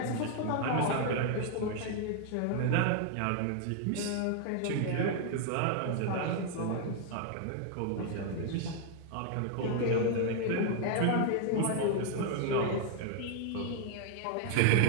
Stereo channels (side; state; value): both; different; correlation 0.00